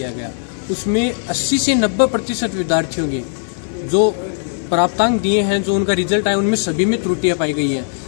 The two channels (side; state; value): right; silent; 64 dB below the other